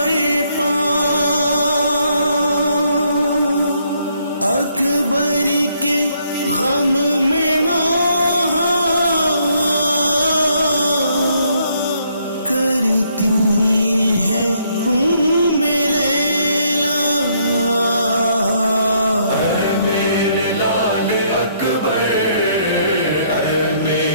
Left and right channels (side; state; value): both; inverted; correlation -0.70